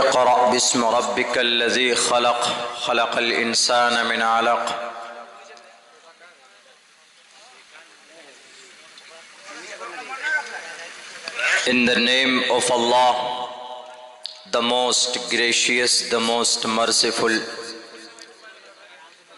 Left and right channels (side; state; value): both; identical; correlation 1.00